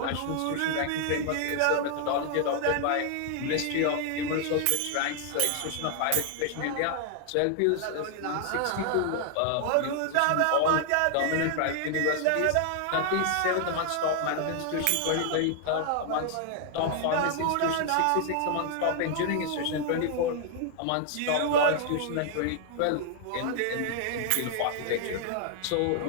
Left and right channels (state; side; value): different; both; correlation 0.00